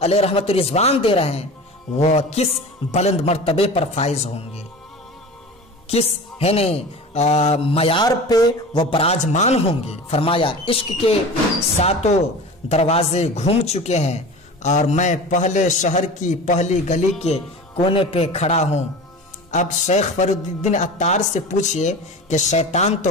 علیہ رحمت رضوان دے رہے ہیں وہ کس بلند مرتبے پر فائز ہوں گے، کس معیار پہ وہ براجمان ہوں گے۔ فرمایا عشق کے ساتوں دروازے گھوم چکے ہیں اور میں پہلے شہر کی پہلی گلی کے کونے پہ کھڑا ہوں۔ اب شیخ فرید الدین عطار سے پوچھئے کہ شیطان تو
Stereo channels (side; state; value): both; normal; correlation 0.34